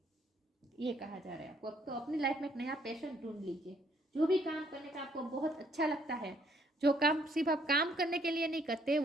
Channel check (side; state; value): both; normal; correlation 0.67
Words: ये कहा जा रहा है आपको। तो अपनी लाइफ में एक नया पैशन ढूंढ लीजिए, जो भी काम करने का आपको बहुत अच्छा लगता है, जो काम सिर्फ आप काम करने के लिए नहीं करते,